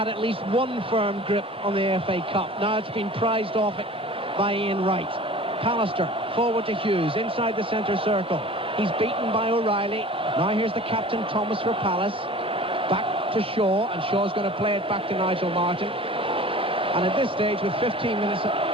at least one firm grip on the FA Cup. Now it's been prized off it by Ian Wright. Pallister forward to Hughes, inside the centre circle. He's beaten by O'Reilly. Now here's the captain, Thomas, for Palace. Back to Shaw, and Shaw's going to play it back to Nigel Martin. And at this stage, with 15 minutes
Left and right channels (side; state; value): both; normal; correlation 0.42